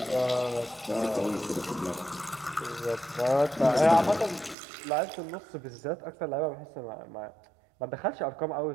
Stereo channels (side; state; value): left; drops out; at 4.5 s